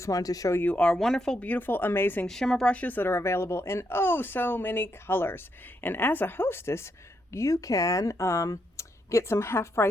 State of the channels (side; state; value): both; normal; correlation 0.79